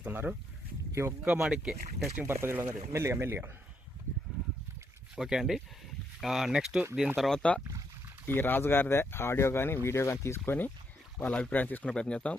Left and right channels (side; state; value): both; normal; correlation 0.76